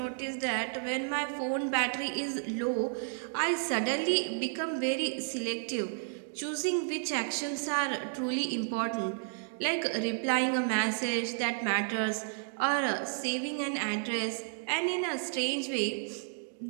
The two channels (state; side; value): silent; left; digital silence